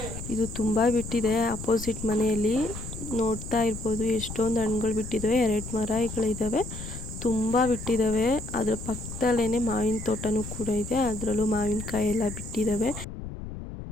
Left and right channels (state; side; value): noise; left; rumble, 10 dB below the sound